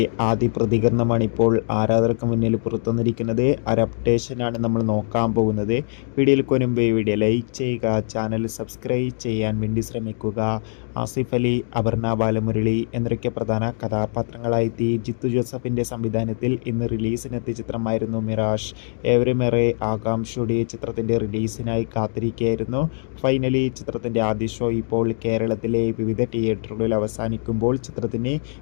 ആദ്യ പ്രതികരണമാണ് ഇപ്പോൾ ആരാധകർക്ക് മുന്നിൽ പുറത്തുവന്നിരിക്കുന്നത്. ഒരു അപ്ഡേഷനാണ് നമ്മൾ നോക്കാൻ പോകുന്നത്. വീഡിയോയിൽ മുൻപ് വീഡിയോ ലൈക്ക് ചെയ്യുക, ചാനൽ സബ്സ്ക്രൈബ് ചെയ്യാൻ വേണ്ടി ശ്രമിക്കുക. ആസിഫ് അലി, അപർണ ബാലമുരളി എന്നൊക്കെ പ്രധാന കഥാപാത്രങ്ങളായെത്തി ജിത്തു ജോസഫിൻ്റെ സംവിധാനത്തിൽ ഇന്ന് റിലീസിനെത്തിയ ചിത്രമായിരുന്നു മിറാഷ്. ഏവരുമേറെ ആകാംക്ഷയോടെ ചിത്രത്തിൻ്റെ റിലീസിനായി കാത്തിരിക്കുകയായിരുന്നു. ഫൈനലി ചിത്രത്തിൻ്റെ ആദ്യ ഷോ ഇപ്പോൾ കേരളത്തിലെ വിവിധ തിയേറ്ററുകളിൽ അവസാനിക്കുമ്പോൾ ചിത്രത്തിന്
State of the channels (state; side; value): silent; right; 62 dB below the other